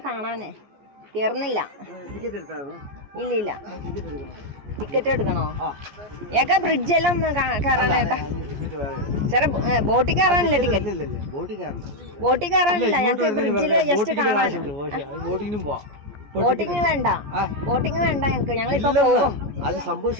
കാണാനേ കയറുന്നില്ല. ഇല്ല ഇല്ല, ടിക്കറ്റ് എടുക്കണോ? ഏക്കാ ബ്രിഡ്ജെല്ലാം ഒന്ന് കയറാനേട്ടാ. ചെറിയ ബോട്ടിൽ കയറാനില്ല ടിക്കറ്റ്. ബോട്ടിൽ കയറാനില്ല, ഞങ്ങൾക്ക് ബ്രിഡ്ജിൽ ജസ്റ്റ് കാണാൻ. ബോട്ടിങ് വേണ്ട, ബോട്ടിങ് വേണ്ട ഞങ്ങൾക്ക്. ഞങ്ങളിപ്പോ പോകും. അത് സംഭവം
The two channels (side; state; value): left; late; 14 ms